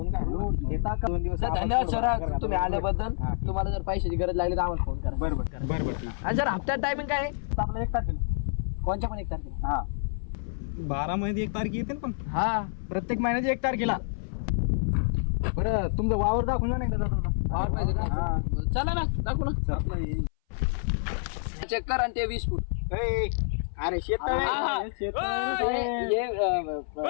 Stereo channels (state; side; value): silent; right; 58 dB below the other